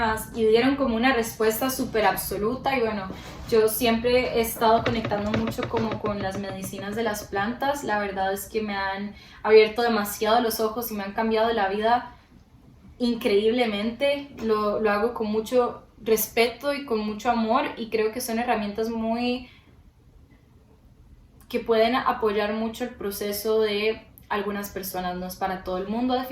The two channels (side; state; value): both; identical; correlation 1.00